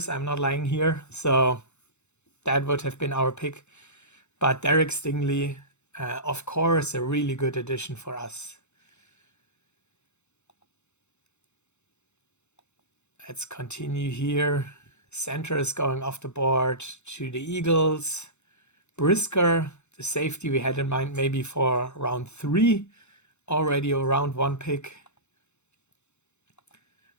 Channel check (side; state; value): right; late; 0.82 ms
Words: I'm not lying here. So that would have been our pick. But Derek Stingley, of course, a really good addition for us. Let's continue here. Center is going off the board to the Eagles. Brisker, the safety we had in mind maybe for round 3. Already a round 1 pick.